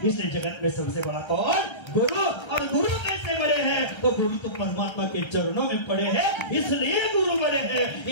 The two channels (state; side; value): late; right; 1.3 ms